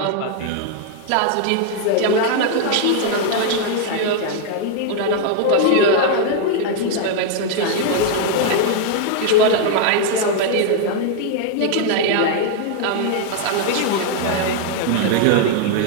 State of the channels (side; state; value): both; different; correlation 0.00